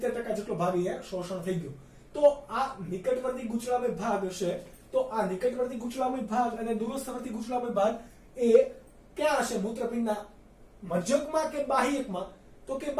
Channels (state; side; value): identical; both; correlation 1.00